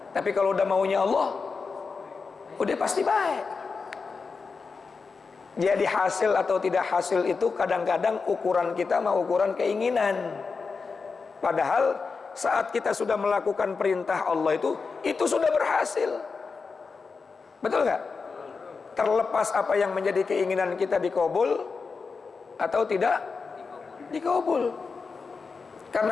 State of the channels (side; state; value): right; quieter; 4.8 dB